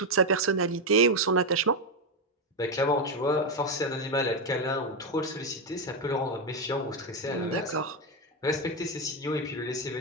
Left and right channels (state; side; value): normal; both; correlation 0.07